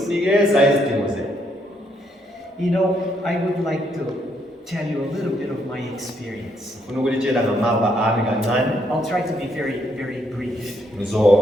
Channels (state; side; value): normal; both; correlation 0.73